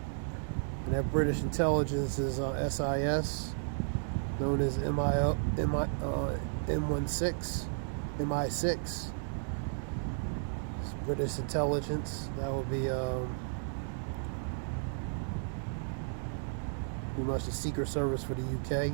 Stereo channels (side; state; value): left; silent; digital silence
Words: that British intelligence is SIS, known as M16, MI6. It's British intelligence. That would be pretty much the Secret Service for the UK.